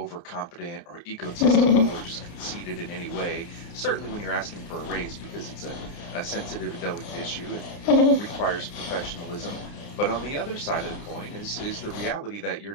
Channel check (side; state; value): right; late; 30 ms